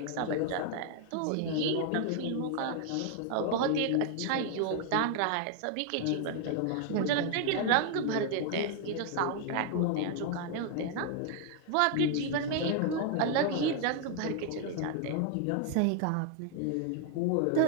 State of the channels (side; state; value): both; different; correlation 0.00